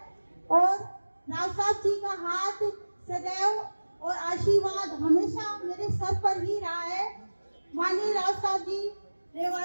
और राव साहब जी का हाथ सदैव और आशीर्वाद हमेशा मेरे सर पर ही रहा है। माननीय राव साहब जी,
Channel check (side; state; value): both; inverted; correlation -1.00